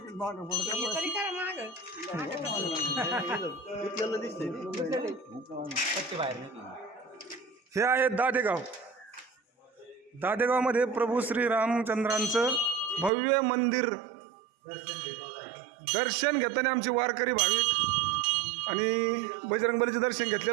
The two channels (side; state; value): left; drops out; at 13.1 s